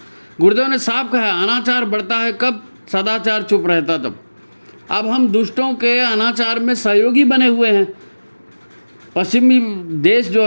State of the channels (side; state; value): both; inverted; correlation -1.00